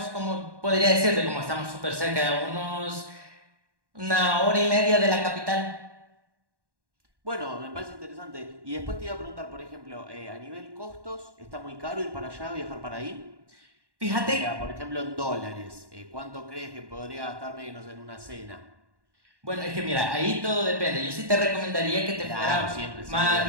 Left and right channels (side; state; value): left; late; 1.1 ms